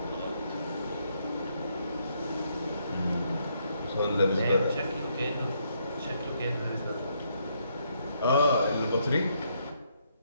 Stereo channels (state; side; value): inverted; both; correlation -0.73